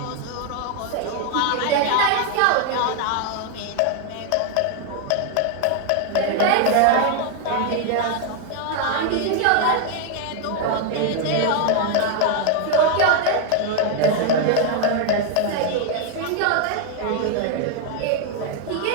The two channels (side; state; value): both; different; correlation 0.00